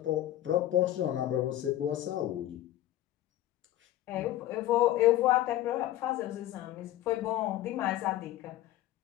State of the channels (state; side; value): quieter; right; 13.9 dB